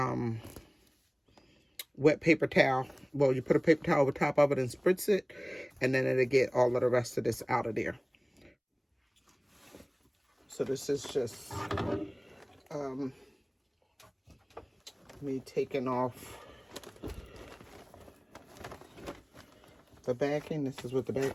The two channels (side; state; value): both; identical; correlation 1.00